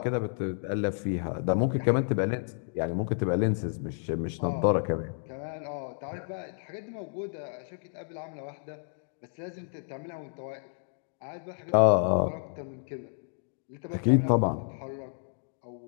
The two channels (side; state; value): right; silent; digital silence